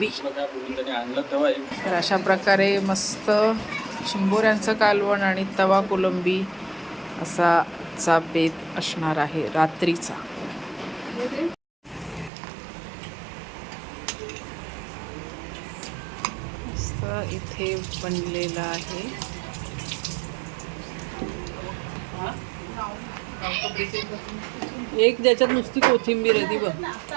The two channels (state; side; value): drops out; left; at 12.3 s